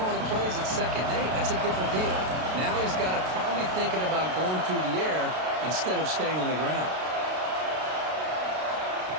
the plays at 2nd and 8, that's a different deal. Now he's got to probably thinking about going through the air instead of staying on the ground.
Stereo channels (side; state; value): left; late; 32 ms